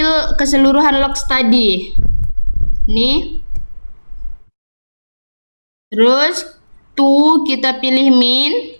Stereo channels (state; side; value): inverted; both; correlation -1.00